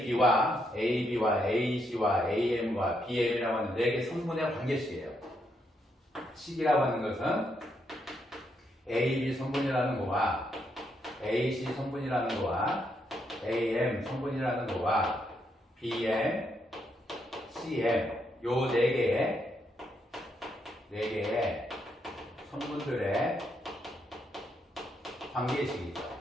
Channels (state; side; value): normal; both; correlation 0.78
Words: AC와 AM과 BM이라고 하는 4개 성분의 관계식이에요. 식이라고 하는 것은 AB 성분이라는 거와 AC 성분이라는 거와 AM 성분이라는 거와 BM, CM 요 4개의 성분들의 관계식이죠.